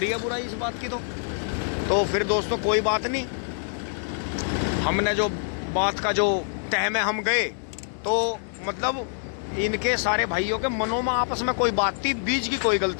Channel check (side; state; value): right; silent; digital silence